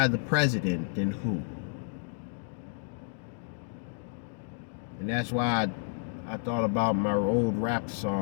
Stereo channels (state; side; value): silent; right; digital silence